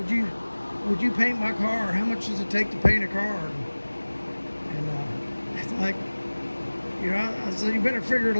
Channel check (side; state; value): both; inverted; correlation -1.00